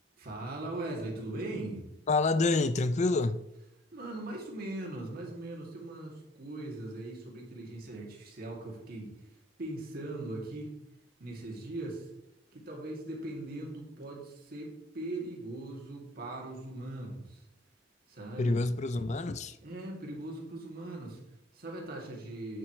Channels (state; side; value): normal; both; correlation 0.55